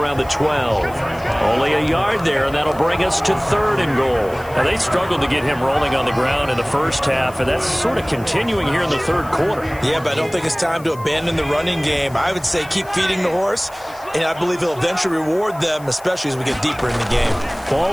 the 12. Only a yard there, and that'll bring us to third and goal. Now, they struggled to get him rolling on the ground in the first half, and that's sort of continuing here in the third quarter. Yeah, but I don't think it's time to abandon the running game. I would say keep feeding the horse, and I believe he'll eventually reward them, especially as we get deeper in the game.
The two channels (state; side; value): noise; left; hiss, 23 dB below the sound